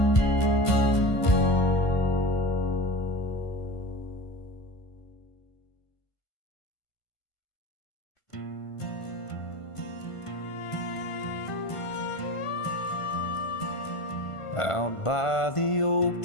Out by the oak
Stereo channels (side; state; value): right; late; 1.5 ms